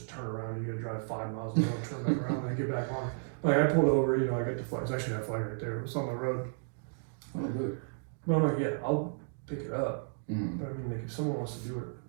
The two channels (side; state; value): left; silent; digital silence